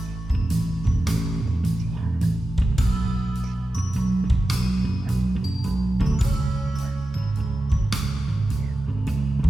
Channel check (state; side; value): normal; both; correlation 0.92